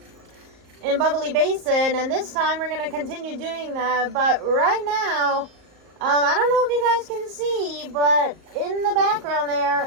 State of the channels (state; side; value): late; left; 38 ms